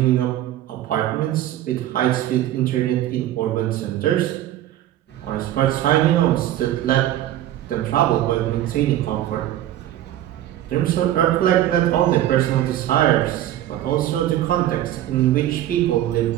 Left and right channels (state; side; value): quieter; left; 13.0 dB